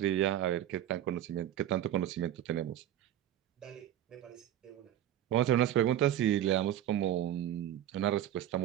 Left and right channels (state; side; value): quieter; left; 11.8 dB